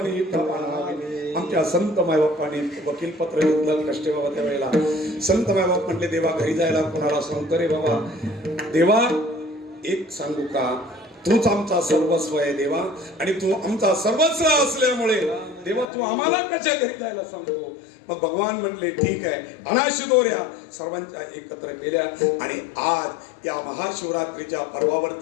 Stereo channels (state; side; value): drops out; right; at 15.9 s